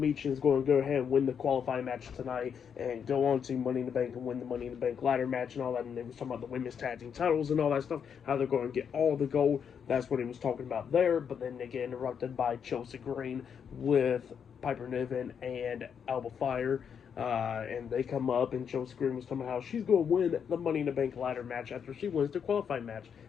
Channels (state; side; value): quieter; right; 7.4 dB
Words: is going to go ahead and win the qualifying match tonight and go on to Money in the Bank and win the Money in the Bank ladder match and all that. And they was talking about the women's tag team titles and all that stuff, how they're going to get all the gold. That's what he was talking about there. But then they get interrupted by Chelsea Green with Piper Niven and Alba Fire. And they come up, and Chelsea Green was talking about how she's going to win the Money in the Bank ladder match after she wins the qualifying match.